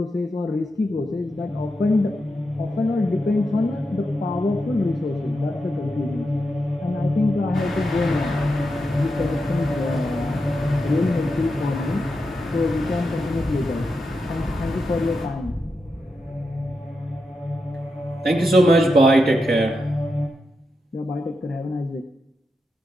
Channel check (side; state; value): both; normal; correlation 0.86